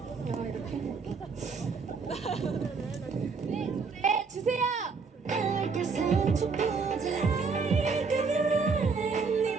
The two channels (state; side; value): quieter; left; 5.0 dB